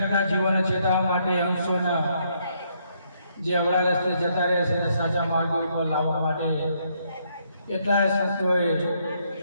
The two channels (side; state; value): both; inverted; correlation -0.72